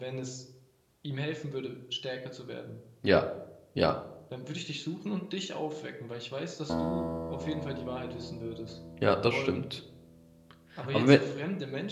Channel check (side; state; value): both; identical; correlation 1.00